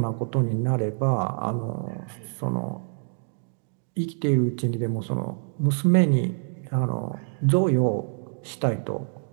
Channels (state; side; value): silent; left; 58 dB below the other